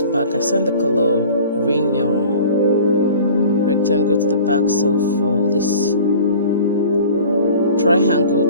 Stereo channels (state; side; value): inverted; both; correlation -0.44